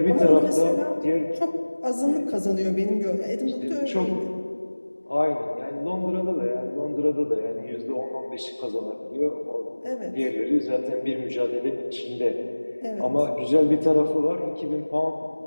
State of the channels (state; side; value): inverted; both; correlation -1.00